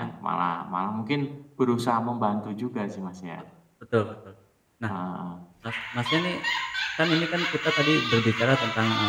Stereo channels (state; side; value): identical; both; correlation 1.00